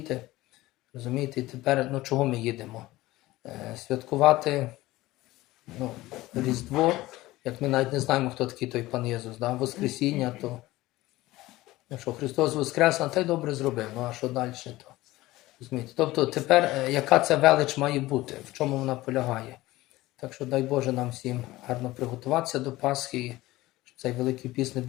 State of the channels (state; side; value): quieter; right; 18.0 dB